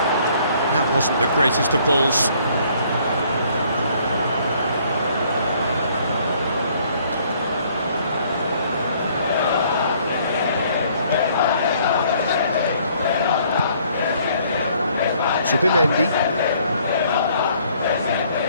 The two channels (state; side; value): inverted; both; correlation -0.62